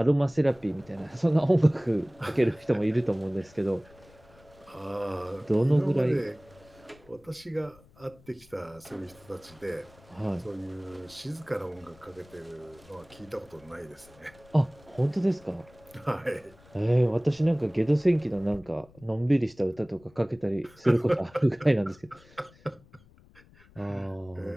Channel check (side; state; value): left; noise; rumble, 26 dB below the sound